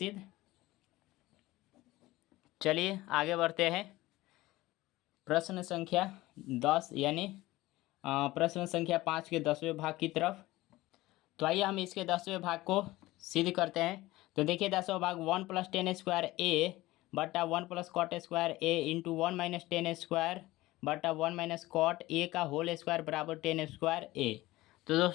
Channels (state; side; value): quieter; right; 18.3 dB